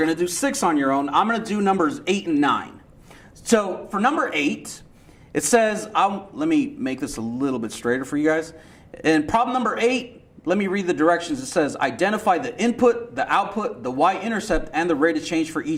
to do 6 on your own. I'm going to do numbers 8 and 9. So for number 8, it says, let me make this a little bit straighter for you guys. In problem number 8, let me read the directions. It says, identify the input, the output, the y-intercept, and the rate of change for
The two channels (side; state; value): both; identical; correlation 1.00